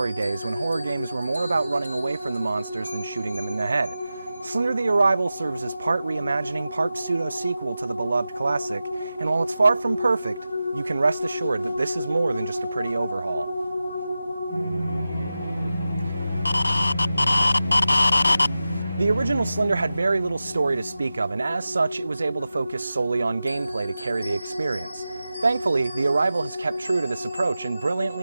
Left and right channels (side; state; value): both; inverted; correlation -0.93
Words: days when horror games were more about running away from the monsters than shooting them in the head. Slender the Arrival serves as part reimagining, part pseudo-sequel to the beloved classic, and while it's far from perfect, you can rest assured that this is more than just a pretty overhaul. The original Slender had very little story to speak of, and as such, it was able to focus solely on gameplay to carry the experience. Thankfully, The Arrival has kept true to this approach and